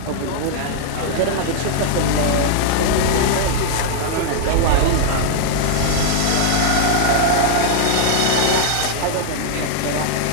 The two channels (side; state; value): both; different; correlation -0.01